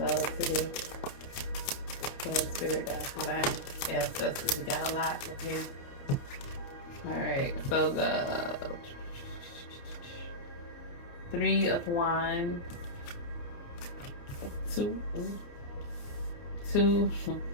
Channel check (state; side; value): late; right; 29 ms